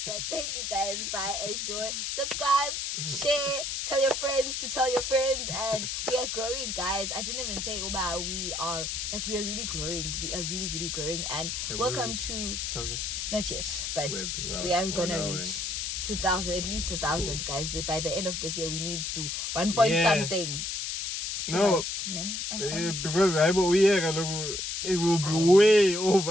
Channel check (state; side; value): noise; left; hiss, 3 dB below the sound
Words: But thank you guys. Bye. Enjoy. Subscribe, share, tell your friends to tell your friends. And we are growing, guys. I didn't even say Uba, we are really growing. We are really, really growing. And Have we welcome reached to 1,000? not yet, but Wow. we are gonna Wow, reach 2,000, at least 2,000, guys. By the end of this year, we need to 1 Yeah. something. 2 No. months, ne? Because it will be way